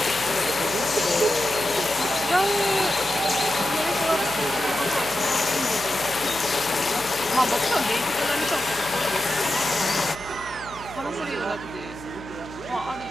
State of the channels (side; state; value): left; noise; hum, 18 dB below the sound